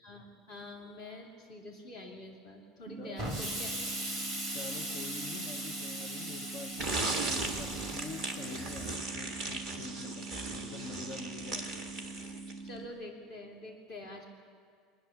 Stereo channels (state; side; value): normal; both; correlation 0.38